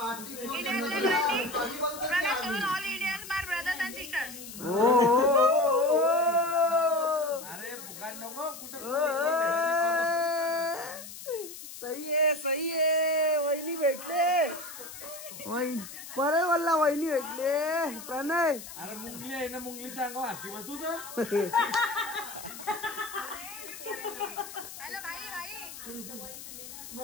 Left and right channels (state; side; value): noise; left; hiss, 13 dB below the sound